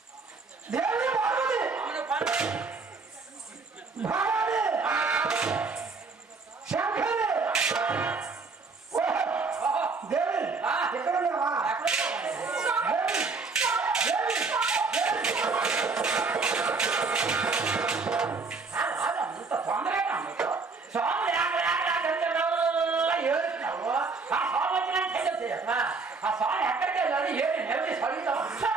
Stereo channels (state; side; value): quieter; left; 4.4 dB